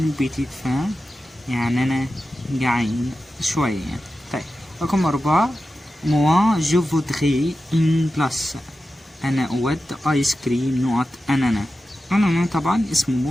بيتيت فان، يعني انا جعان شوية يعني. طيب رقم 4 موا جو فودغي ان بلاس، انا اود ايس كريم نقط انانا. انانا طبعا اسم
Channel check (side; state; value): both; normal; correlation 0.92